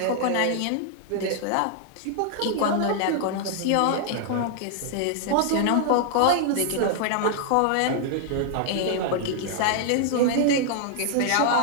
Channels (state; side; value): different; both; correlation 0.00